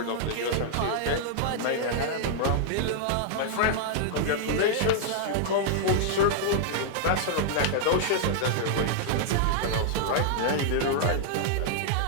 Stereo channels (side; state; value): both; different; correlation -0.01